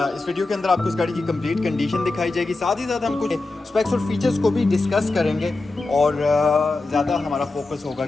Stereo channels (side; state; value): right; quieter; 3.3 dB